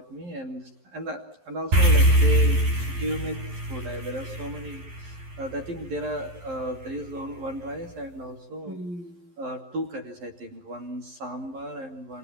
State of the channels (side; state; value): left; late; 11 ms